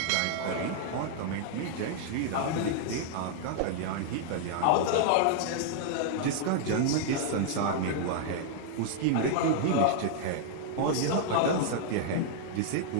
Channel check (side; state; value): both; different; correlation -0.01